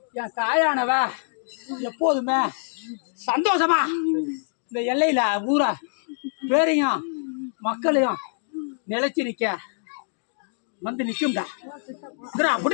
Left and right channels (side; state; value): right; silent; digital silence